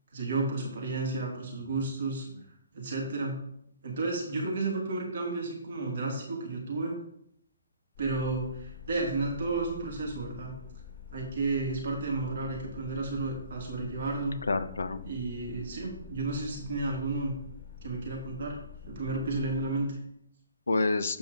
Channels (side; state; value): both; inverted; correlation -0.55